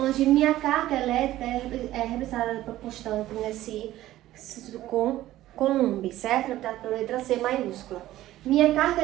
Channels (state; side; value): quieter; left; 14.8 dB